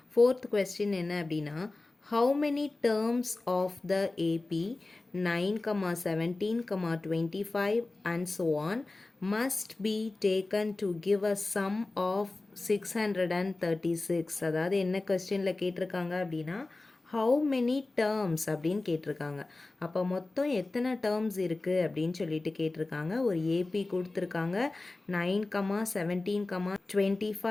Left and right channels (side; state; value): right; quieter; 3.1 dB